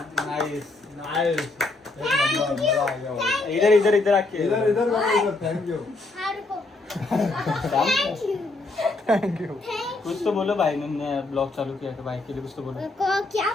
Nice nice. इधर इधर इधर आके इधर थैंक यू. हा रुको. थँक्यू. कुछ तो बोलो भाई ने ब्लॉग चालू किया तो भाई के लिए कुछ तो बोलो. क्या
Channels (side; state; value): right; quieter; 3.2 dB